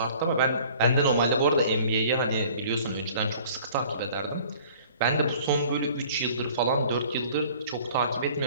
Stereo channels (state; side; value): inverted; both; correlation -0.51